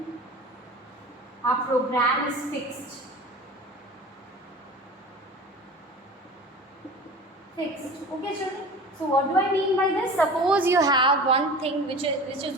a program is fixed. Okay, children? So what do I mean by this? Suppose you have one thing which is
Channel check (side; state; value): both; normal; correlation 0.37